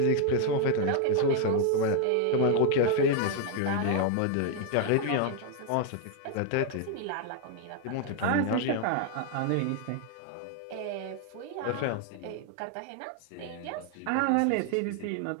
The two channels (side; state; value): both; different; correlation 0.00